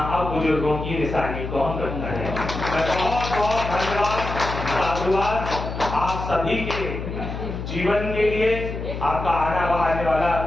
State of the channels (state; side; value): noise; left; hum, 6 dB below the sound